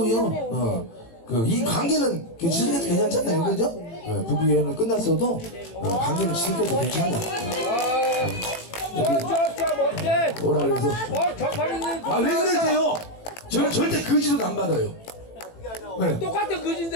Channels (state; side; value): late; right; 18 ms